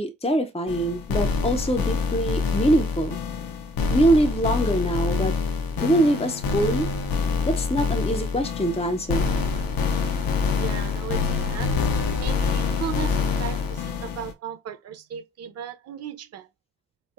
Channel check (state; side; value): normal; both; correlation 0.60